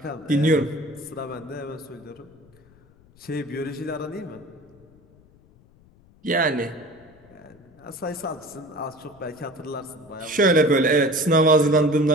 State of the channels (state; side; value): noise; left; rumble, 28 dB below the sound